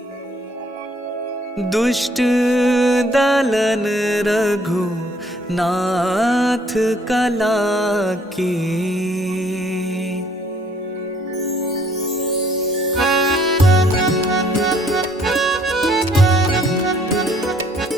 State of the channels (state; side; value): normal; both; correlation 0.63